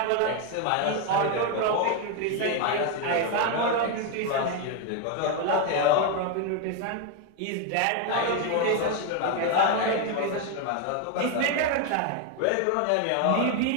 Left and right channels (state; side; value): different; both; correlation 0.02